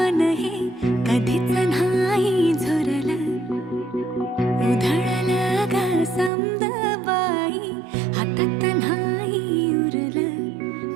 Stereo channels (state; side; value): drops out; left; at 6.3 s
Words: हे कधीच नाही झुरलं उधळलं ग समद बाई हातात नाही